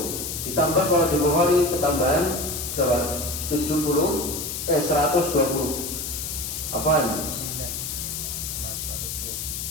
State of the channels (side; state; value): left; noise; hiss, 5 dB below the sound